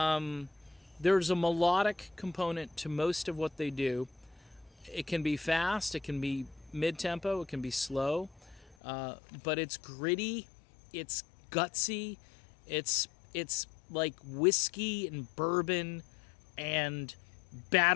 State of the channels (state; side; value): drops out; right; at 8.8 s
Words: There's a melodic component to most of what they do. It can be fast, it can be mid-tempo, it can be slow, but it's gritty, it's gutsy, it's like whiskey and bourbon and